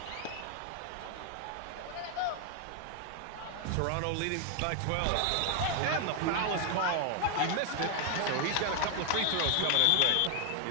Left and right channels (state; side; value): different; both; correlation 0.00